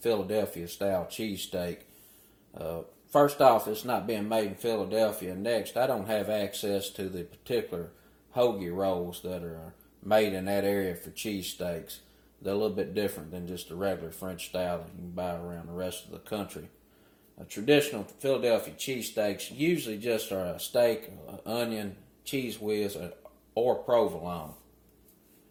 style cheesesteak. First off, it's not being made in Philadelphia. Next, I don't have access to the particular hoagie rolls that are made in that area for cheesesteaks. They're a little bit different than just the regular French style that you can buy around the rest of the country. Traditional Philadelphia cheesesteaks usually just are a steak, onion, cheese whiz, or provolone.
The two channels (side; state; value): both; identical; correlation 1.00